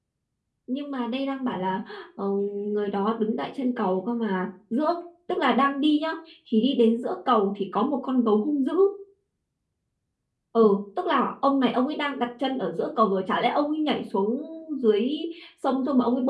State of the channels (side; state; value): both; identical; correlation 1.00